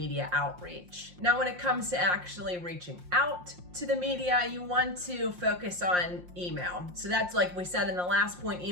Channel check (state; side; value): late; left; 5.6 ms